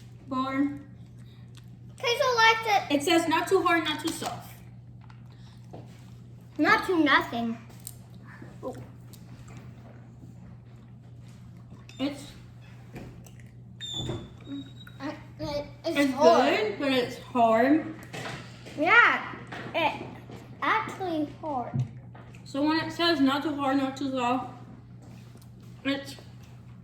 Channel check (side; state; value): both; identical; correlation 1.00